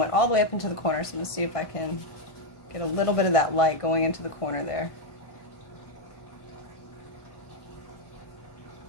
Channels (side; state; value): right; late; 1.5 ms